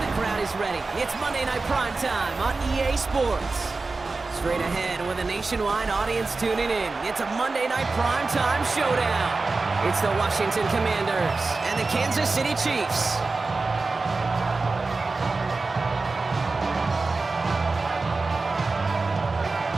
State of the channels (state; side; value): quieter; left; 3.8 dB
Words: the crowd is ready. It's Monday Night Primetime on EA Sports. Straight ahead with a nationwide audience tuning in. It's a Monday Night Primetime showdown. It's the Washington Commanders and the Kansas City Chiefs.